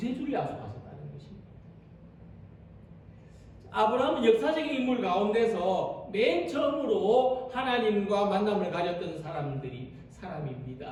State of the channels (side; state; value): both; identical; correlation 1.00